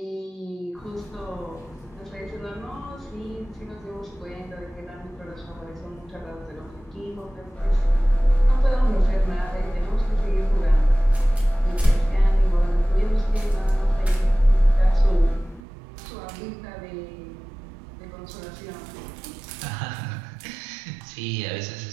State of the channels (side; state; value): left; drops out; at 15.6 s